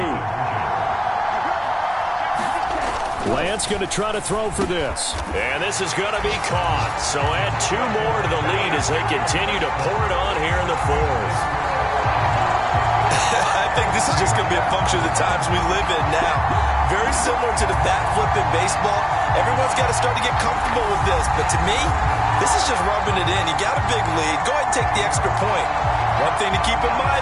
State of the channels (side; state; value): both; identical; correlation 1.00